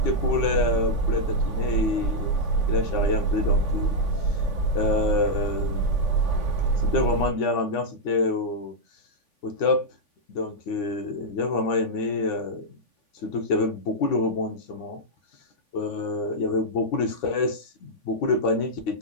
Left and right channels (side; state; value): right; late; 3.5 ms